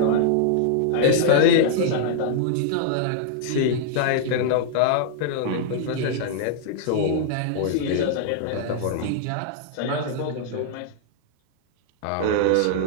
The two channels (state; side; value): different; both; correlation -0.01